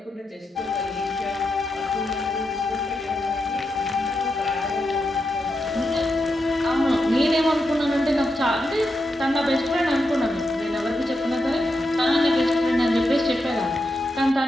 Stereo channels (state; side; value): normal; both; correlation 0.86